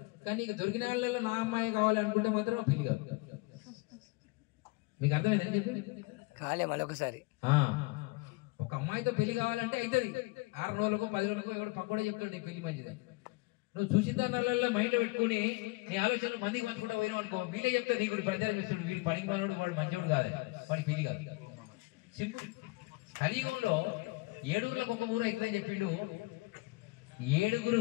కానీ నీకు దొరికిన వాళ్ళలో నా అమ్మాయి కావాలనుకుంటే మాత్రం పెళ్లి కాదు. మీకు అర్థమైంది అని చెప్పి కాలే మళ్ళొకసారి ఒక అమ్మాయితో పెళ్లి కావాలంటే అవుతుంది. 6 రోజులకు 10 రోజులకు ఎవడు పక్కడే చెప్తాడు పెళ్లి మంచిదని. నువ్వు చూసిన దానిలో మైండ్ పెట్టుకుని నీ ఆలోచనలు మందికి పంచుకుంటూ పోయినావు అనుకో, వీళ్ళే చెప్తారు నీకు ప్రచారం ఇస్తాడు, వీడు పనికి పనివాడు, వాడు మంచోడు కాదు, వాడి పెళ్లి కాదు. సింపుల్. కలియుగంలో 7 ఊర్లకు ఒక ఊరు అవుతుందని చెప్పిండు. 7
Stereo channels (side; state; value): right; quieter; 24.2 dB